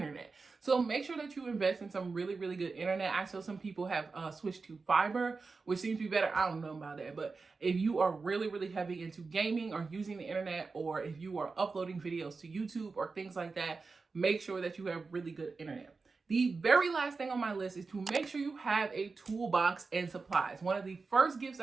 So make sure that you invest in some really, really good internet. I saw some people have switched to fiber, which seems to be better. I don't know about that. But if you are really, really heavy into gaming or using the internet, or if you are uploading videos to YouTube or things like that, make sure that you have really good internet. The very last thing on my list is to make sure you have a toolbox and supplies. One of the first gifts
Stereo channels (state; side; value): quieter; left; 4.3 dB